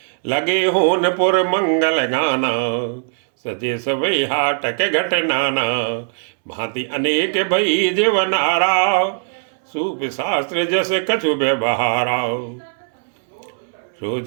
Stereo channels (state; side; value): silent; left; 66 dB below the other